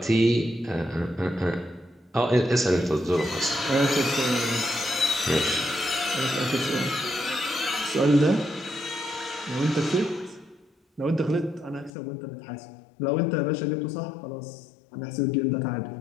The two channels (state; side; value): drops out; right; at 11.9 s